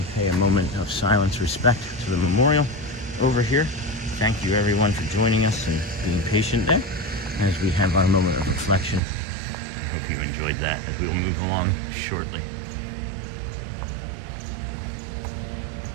pay a moment of silence, respect to the memorial over here. Thank you, everyone, for joining us and being patient there as we have our moment of reflection. I hope you enjoyed that as we will move along shortly.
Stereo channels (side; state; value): left; drops out; at 9.0 s